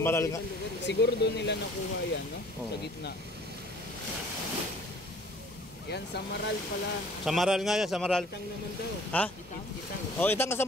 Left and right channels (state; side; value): normal; both; correlation 0.52